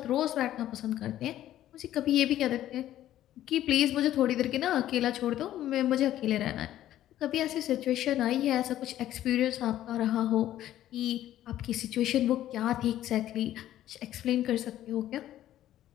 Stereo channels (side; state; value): right; quieter; 12.8 dB